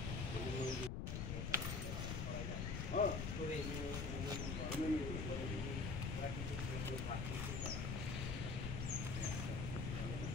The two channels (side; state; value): left; noise; rumble, 1 dB below the sound